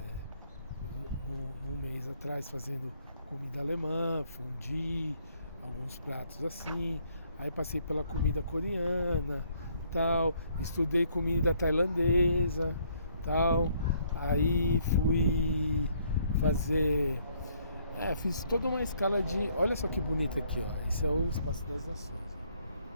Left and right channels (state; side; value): inverted; both; correlation -0.67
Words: um mês atrás fazendo comida alemã, fondue, alguns pratos assim, aí passei pela comida coreana, tal, estudei comida tailandesa, tal, aí fui fazer, fiz toda uma escala de, olha só que bonito aqui, ó, esse é o Espaço das Nações.